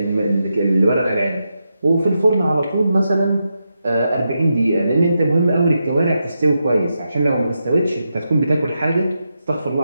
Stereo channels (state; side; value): inverted; both; correlation -0.86